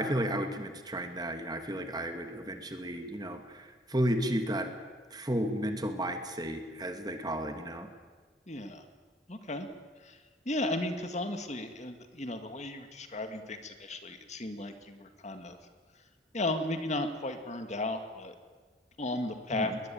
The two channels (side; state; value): both; normal; correlation 0.53